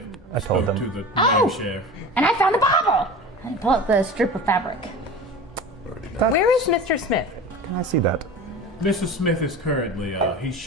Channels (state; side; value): normal; both; correlation 0.34